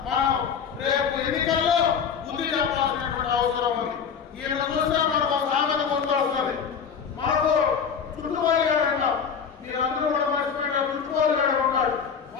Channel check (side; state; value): right; quieter; 6.8 dB